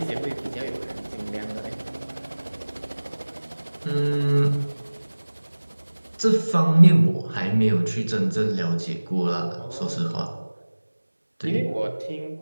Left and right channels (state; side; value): inverted; both; correlation -1.00